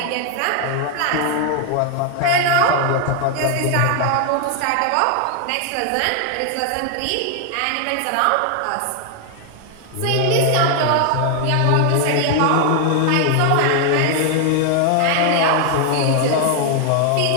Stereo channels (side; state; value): both; different; correlation 0.00